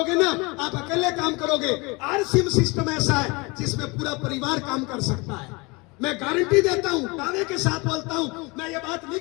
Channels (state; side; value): quieter; right; 26.7 dB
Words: ना, आप अकेले काम करोगे, RC सिस्टम ऐसा है जिसमें पूरा परिवार काम कर सकता है। मैं गारंटी देता हूं, दावे के साथ बोलता हूं, मैं ये बात